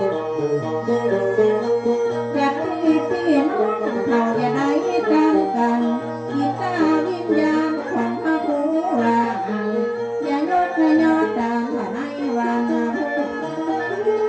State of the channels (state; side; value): identical; both; correlation 1.00